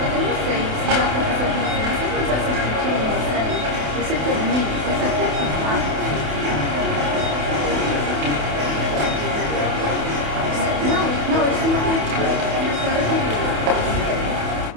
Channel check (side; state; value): left; late; 28 ms